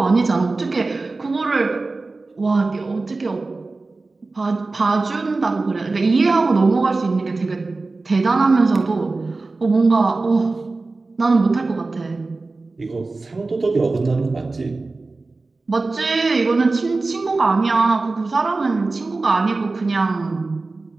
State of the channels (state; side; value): quieter; left; 3.5 dB